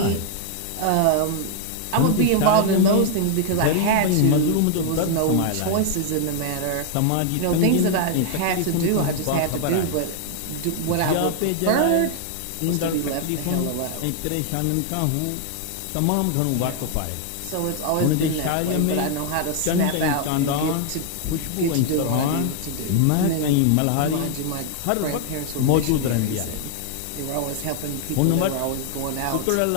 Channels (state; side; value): different; both; correlation 0.00